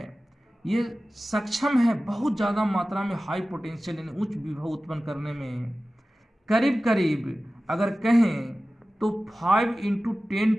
ये सक्षम है बहुत ज़्यादा मात्रा में हाई पोटेंशियल यानी उच्च विभव उत्पन्न करने में। करीब करीब अगर कहें तो 5 ×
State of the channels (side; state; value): both; normal; correlation 0.96